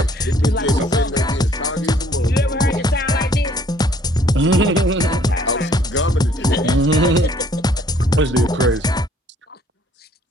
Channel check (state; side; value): normal; both; correlation 0.61